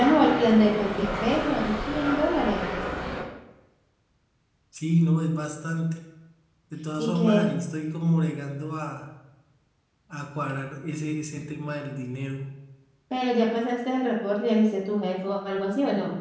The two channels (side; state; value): both; identical; correlation 1.00